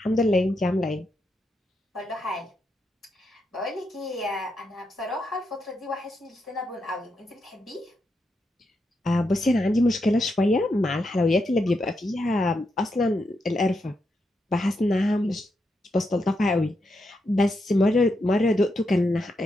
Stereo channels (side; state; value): both; normal; correlation 0.83